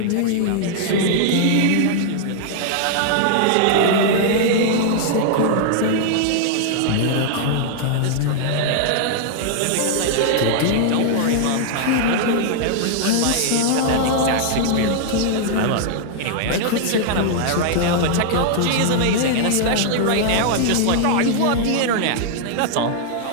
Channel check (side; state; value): both; different; correlation -0.01